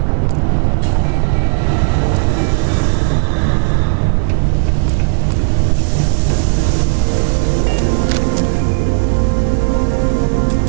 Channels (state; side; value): silent; left; digital silence